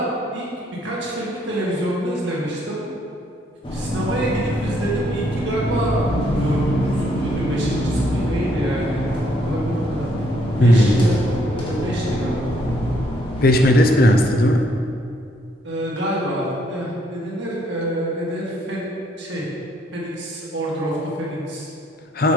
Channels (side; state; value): both; normal; correlation 0.69